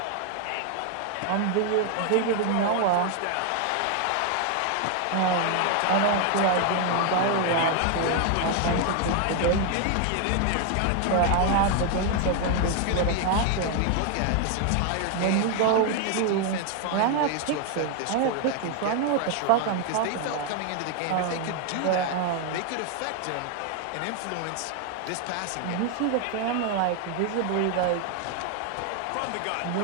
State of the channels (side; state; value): both; different; correlation 0.00